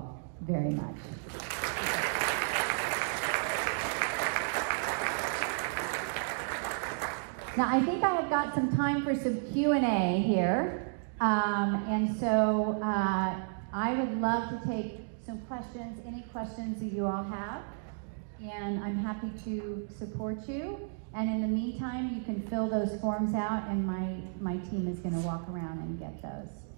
very much. Now, I think I have got some time for some Q&A here. And so I would love to take some questions, any questions that you all have. And I'm happy to support you. And in the meantime, you can fill those forms out, and my team is going to walk around and get those.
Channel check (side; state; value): left; silent; digital silence